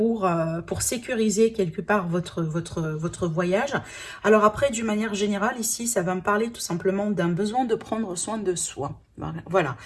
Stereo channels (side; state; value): both; identical; correlation 1.00